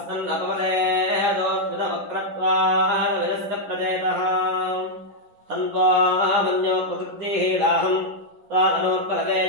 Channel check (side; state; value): left; late; 10 ms